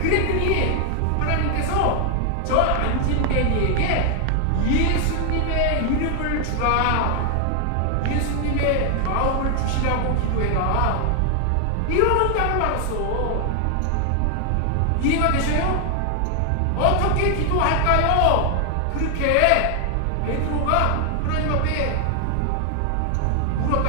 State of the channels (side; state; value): both; different; correlation 0.00